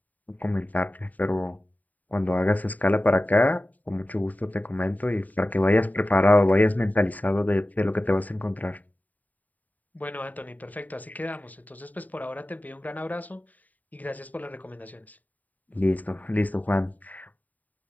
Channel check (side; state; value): right; late; 0.077 ms